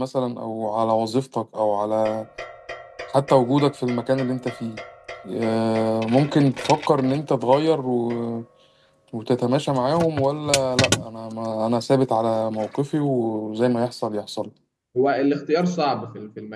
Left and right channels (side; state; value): both; identical; correlation 1.00